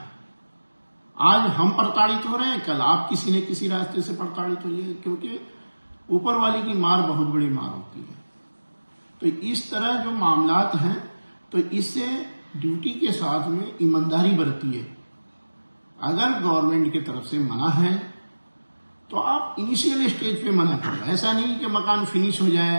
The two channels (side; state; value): both; inverted; correlation -1.00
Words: आज हम प्रताड़ित हो रहे हैं, कल आप किसी न किसी रास्ते से प्रताड़ित होइए, क्योंकि ऊपर वाले की मार बहुत बड़ी मार होती है। तो इस तरह जो मामलात हैं, तो इससे ड्यूटी के साथ में ईमानदारी बरतिए। अगर गवर्नमेंट की तरफ से मना है तो आप इनिशियल स्टेज पे मना करो। ऐसा नहीं कि मकान फिनिश हो